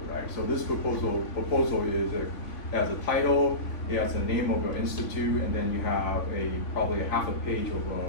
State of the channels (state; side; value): late; right; 3.5 ms